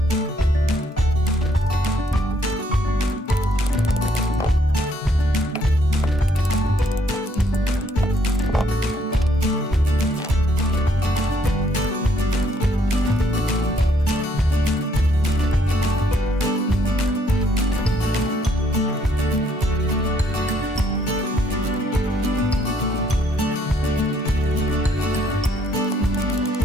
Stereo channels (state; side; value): normal; both; correlation 0.67